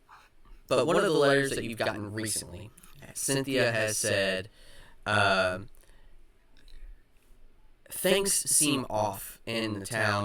one of the letters that you've gotten recently, Cynthia has said, things seem off in the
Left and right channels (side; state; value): both; identical; correlation 1.00